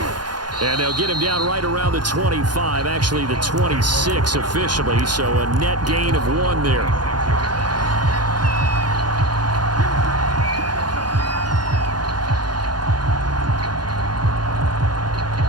And they'll get him down right around the 25, actually the 26 officially, so a net gain of 1 there.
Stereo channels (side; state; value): left; late; 0.70 ms